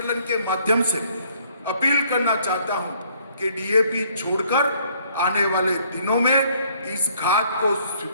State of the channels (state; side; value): inverted; both; correlation -0.63